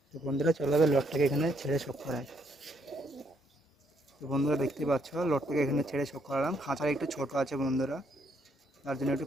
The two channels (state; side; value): normal; both; correlation 0.72